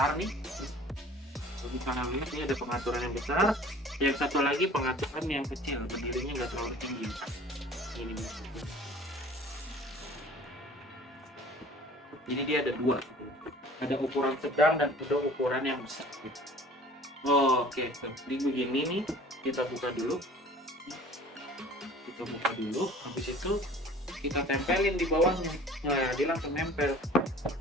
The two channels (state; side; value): normal; both; correlation 0.47